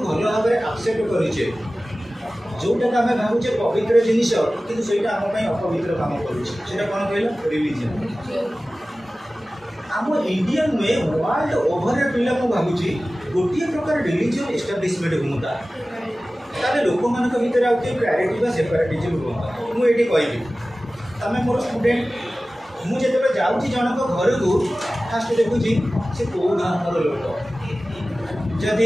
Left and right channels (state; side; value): normal; both; correlation 0.96